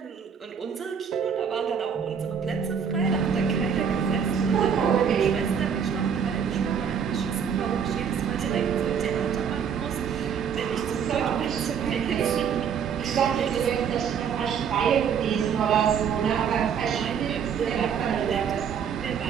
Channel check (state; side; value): quieter; left; 7.4 dB